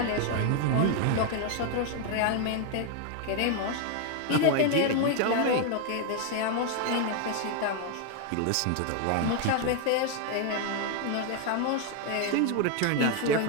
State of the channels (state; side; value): different; both; correlation 0.01